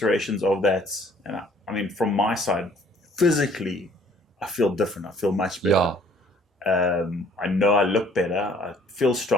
of that, and I mean, from my side, physically, I feel different. I feel much better. Yeah. I know I look better. I feel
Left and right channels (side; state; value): both; normal; correlation 0.58